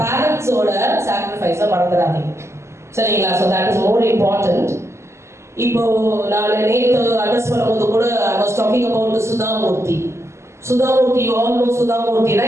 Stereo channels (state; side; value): late; left; 0.13 ms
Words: பேரண்ட்ஸோட சாக்ரிஃபைஸை மறந்துடாதீங்க, சரிங்களா? So that is more important. இப்போ நான் நேற்று அட்ரஸ் பண்ணும்போது கூட I was talking about Sudha Murthy. Sudha Murthy, you all know Sudha Murthy,